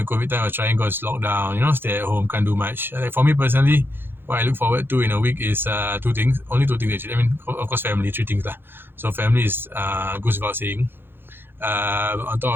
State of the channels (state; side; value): late; left; 0.10 ms